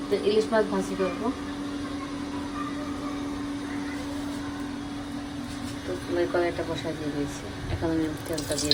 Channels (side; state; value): both; identical; correlation 1.00